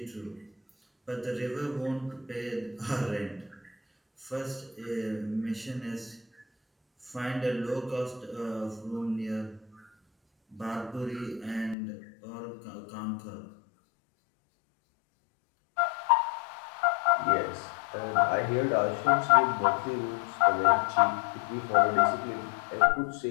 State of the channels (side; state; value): right; drops out; at 11.8 s